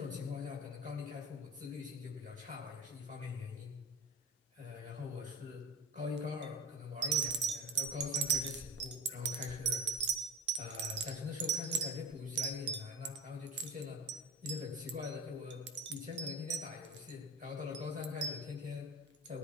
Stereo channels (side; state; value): both; normal; correlation 0.31